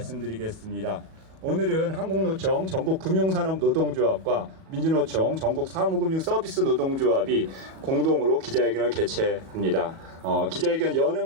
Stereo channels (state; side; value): late; left; 37 ms